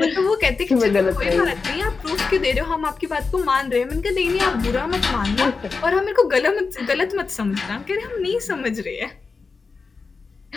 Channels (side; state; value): right; quieter; 4.6 dB